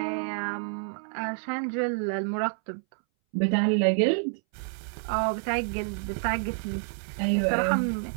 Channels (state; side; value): silent; left; 59 dB below the other